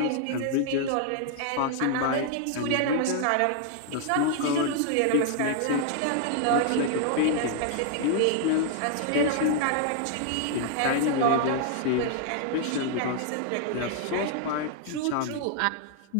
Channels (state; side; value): different; both; correlation 0.00